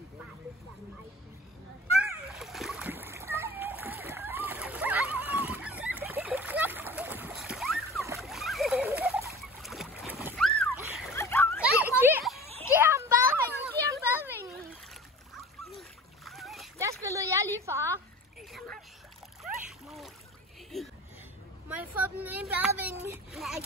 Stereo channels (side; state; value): both; normal; correlation 0.40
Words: Giv ham badevingen. Der spillede jeg lige far. Må jeg få den ene badevinge? Nej,